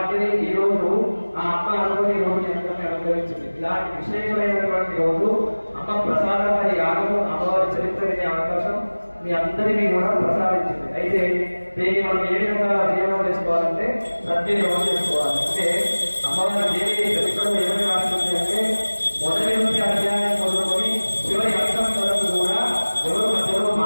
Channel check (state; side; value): inverted; both; correlation -1.00